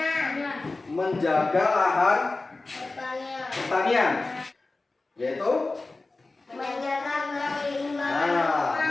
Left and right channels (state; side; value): quieter; right; 3.4 dB